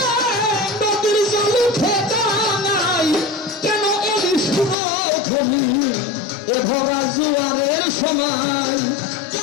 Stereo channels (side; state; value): right; drops out; at 4.8 s